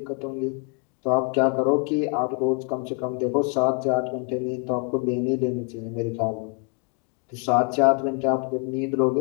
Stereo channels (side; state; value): right; quieter; 34.9 dB